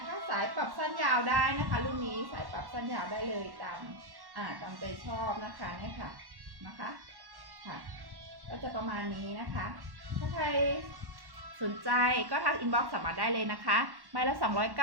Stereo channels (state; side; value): late; left; 1.1 ms